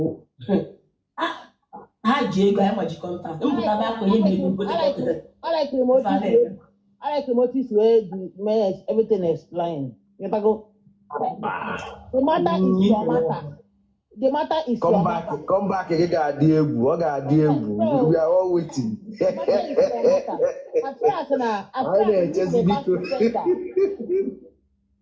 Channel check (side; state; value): both; identical; correlation 1.00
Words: ha ji ego anyị maji kọntaktị mpụta bụ akwa ihe na-ego I like remotes where the everything explained. You go. The matter is your matter. The matter is your matter. Come back again, God, dear boo. We are all waiting.